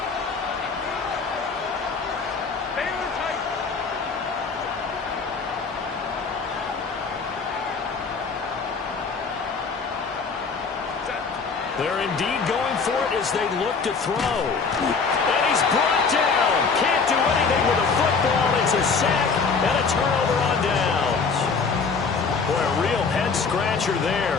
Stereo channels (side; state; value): right; quieter; 5.0 dB